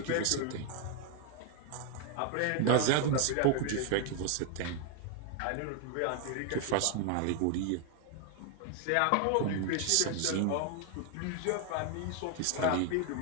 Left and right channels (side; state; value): both; different; correlation 0.00